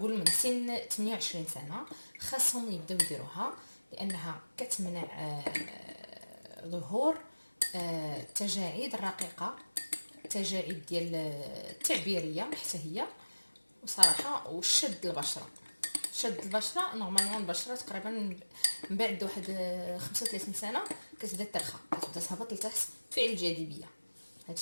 من سن 28 سنه خاصهم يبداو يديروها، لانها كتمنع ظهور التجاعيد الرقيقه، التجاعيد ديال التعبيريه حتى هي، وصراحه وشد البشره. شد البشره نورمالمون البشره تقريبا من بعد واحد 35 سنه كتبدا ترخى، كتبدا تهبط لتحت فعل الجاذبيه. هذا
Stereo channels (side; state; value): both; inverted; correlation -1.00